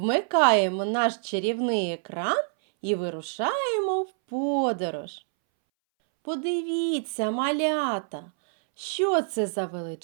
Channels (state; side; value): silent; left; 61 dB below the other